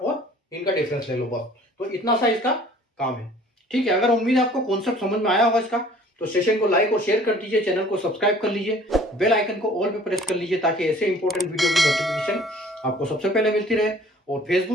इनका डिफरेंस ले लो बस। तो इतना सा इसका काम है। ठीक है, अगर उम्मीद है आपको कॉन्सेप्ट समझ में आया होगा इसका, तो सेशन को लाइक और शेयर कर दीजिए, चैनल को सब्सक्राइब कर लीजिए, बेल आइकन को ऑल पे प्रेस कर लीजिए, ताकि ऐसे इंपॉर्टेंट वीडियो की नोटिफिकेशन आपको सबसे पहले मिलती रहे। और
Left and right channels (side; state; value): both; normal; correlation 0.52